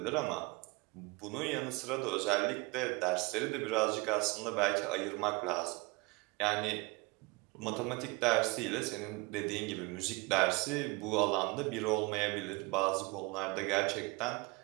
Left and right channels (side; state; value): left; quieter; 26.0 dB